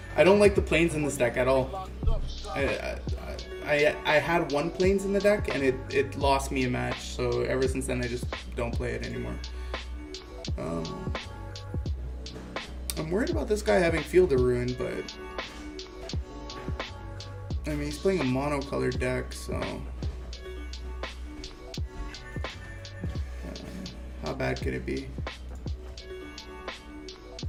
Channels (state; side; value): identical; both; correlation 1.00